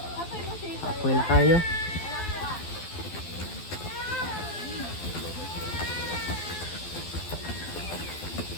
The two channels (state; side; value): late; right; 12 ms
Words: Apoy na kayo.